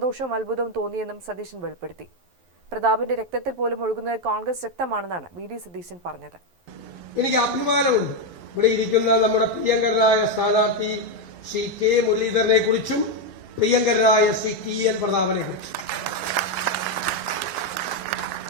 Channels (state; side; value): late; left; 11 ms